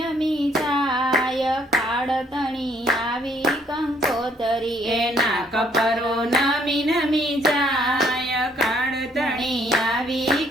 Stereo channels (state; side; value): normal; both; correlation 0.65